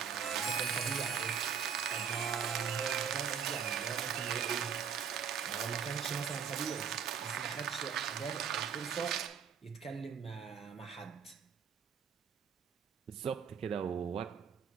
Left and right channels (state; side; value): quieter; left; 7.2 dB